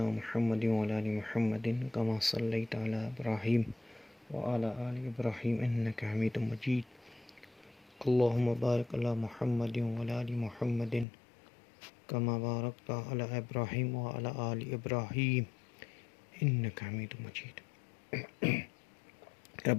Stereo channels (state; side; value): drops out; right; at 11.1 s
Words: محمد وعلی آل محمد کما صلیت علی ابراہیم وعلی آل ابراہیم انک حمید مجید اللہم بارک علی محمد وعلی آل محمد کما بارکت علی ابراہیم وعلی آل ابراہیم انک حمید مجید